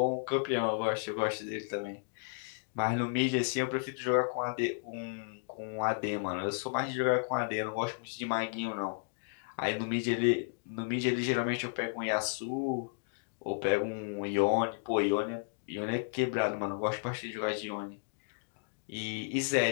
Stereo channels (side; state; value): right; silent; digital silence